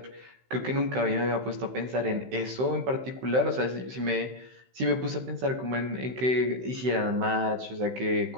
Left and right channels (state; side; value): late; left; 16 ms